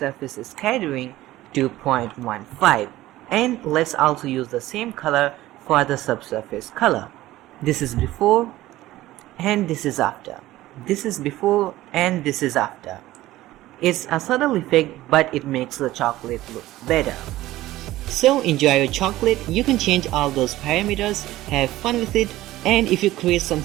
scattering to 0.15, and let's also use the same color for the subsurface color. This is before and this is after. This is before and this is after. It's a subtle effect, but it makes the chocolate look better. So enjoy your chocolate. You can change all those parameters, have fun with it, and if you create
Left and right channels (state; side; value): quieter; left; 16.2 dB